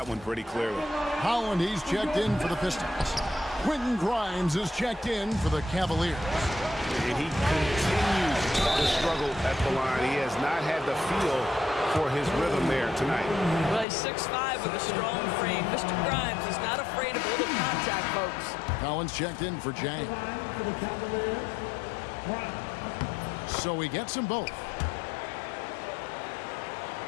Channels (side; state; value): right; drops out; at 13.9 s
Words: one pretty clearly. Holland, he's checked in for the Pistons. Quentin Grimes is checked in for the Cavaliers. And he continues to struggle at the line. He has not had the feel for his rhythm there tonight. Well, he's 6'5" with a strong frame. Mr. Grimes is not afraid of a little contact, folks. Collins checked in for Jang. So he gets them both.